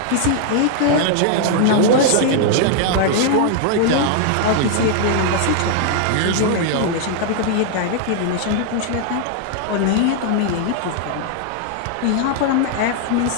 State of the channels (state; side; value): different; both; correlation 0.00